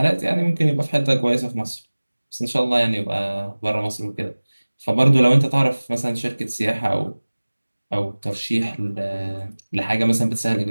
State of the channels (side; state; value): both; inverted; correlation -1.00